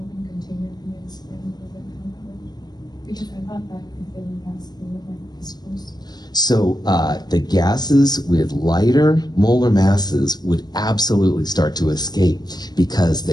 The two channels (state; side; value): late; right; 0.20 ms